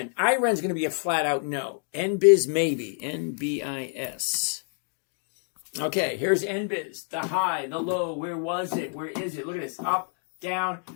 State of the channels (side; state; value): right; silent; 56 dB below the other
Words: IREN's going to be a flat out no. NBIZ maybe. NBIS. Okay, here's NBIZ. The high, the low. Where was it? Where is it? Look at this. Up, down.